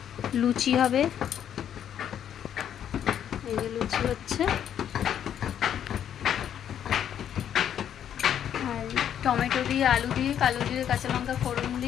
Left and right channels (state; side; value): quieter; right; 9.6 dB